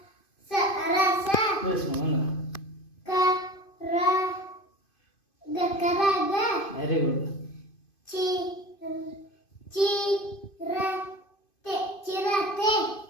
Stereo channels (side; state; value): right; late; 2.5 ms